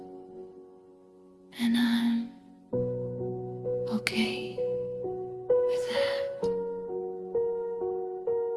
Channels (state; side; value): identical; both; correlation 1.00